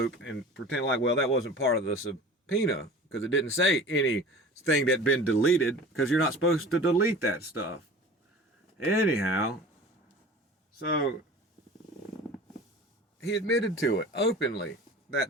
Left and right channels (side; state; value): both; normal; correlation 0.40